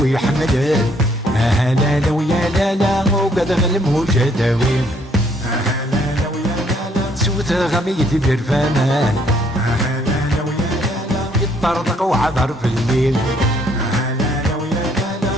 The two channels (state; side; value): normal; both; correlation 0.67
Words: ويحمل لا لا ويا لا لا وقد غلم وجداوي لا لا ويا لا لا سوت غميتي برفانان لا ويا لا لا يطرطق وعبر في الليل لا ويا لا